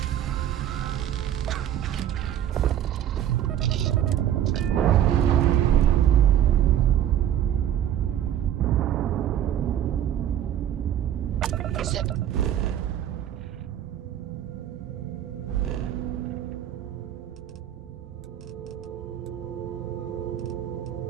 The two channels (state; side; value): quieter; left; 10.8 dB